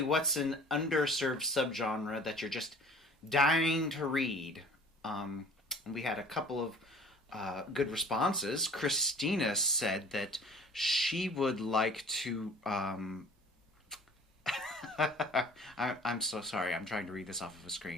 what's an underserved subgenre that you're just dying to read? And we had a couple of good responses. Christina said that she would like to... I'm so sorry. I'm trying to read this off of a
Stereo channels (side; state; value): both; normal; correlation 0.48